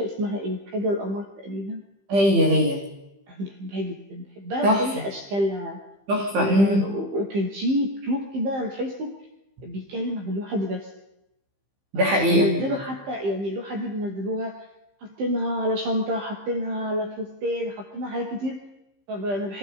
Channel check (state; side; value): late; left; 15 ms